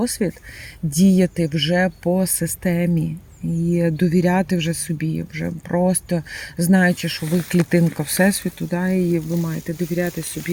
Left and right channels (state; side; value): identical; both; correlation 1.00